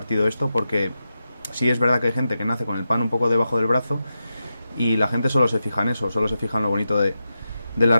esto, porque sí es verdad que hay gente que nace con el pan un poco debajo del brazo, y la gente solo se fija en eso, solo se fija en lo bonito de las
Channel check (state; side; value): inverted; both; correlation -0.90